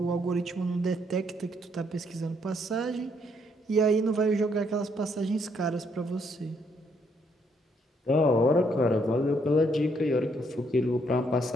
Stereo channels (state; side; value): normal; both; correlation 0.71